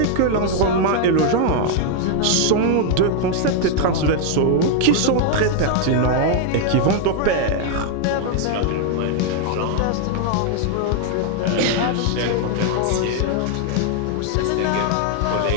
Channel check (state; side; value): different; both; correlation 0.00